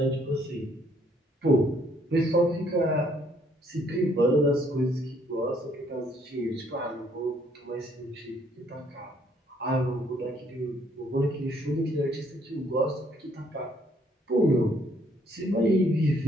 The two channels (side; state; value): both; normal; correlation 0.66